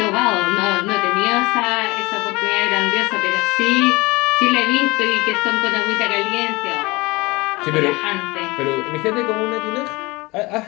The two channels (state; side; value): quieter; right; 23.3 dB